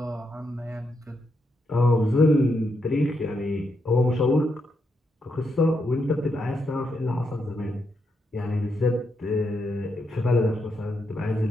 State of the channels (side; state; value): both; normal; correlation 0.81